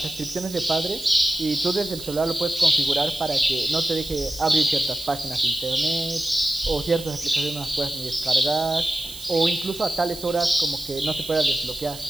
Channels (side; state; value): right; noise; hiss, 14 dB below the sound